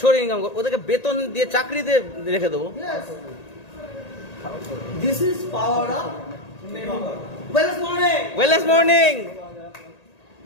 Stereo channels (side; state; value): right; late; 1.8 ms